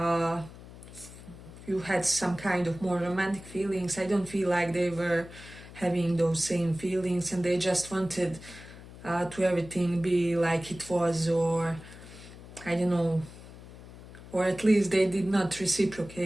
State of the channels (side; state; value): left; noise; hum, 17 dB below the sound